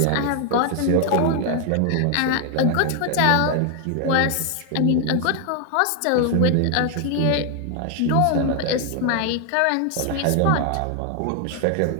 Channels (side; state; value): both; different; correlation 0.00